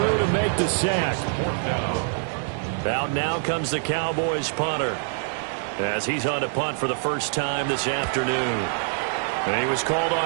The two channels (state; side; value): silent; left; 58 dB below the other